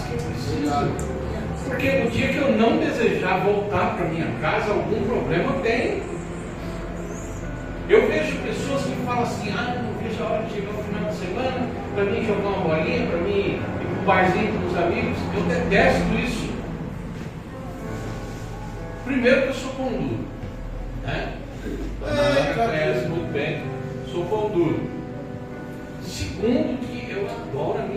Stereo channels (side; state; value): both; identical; correlation 1.00